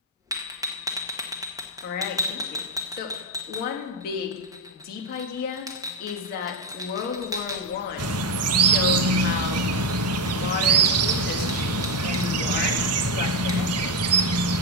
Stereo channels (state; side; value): normal; both; correlation 0.07